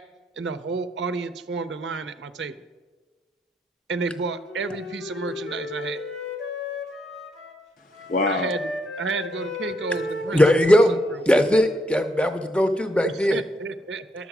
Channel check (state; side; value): normal; both; correlation 0.76